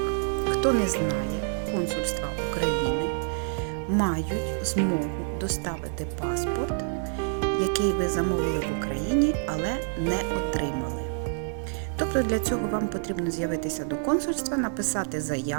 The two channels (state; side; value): silent; left; digital silence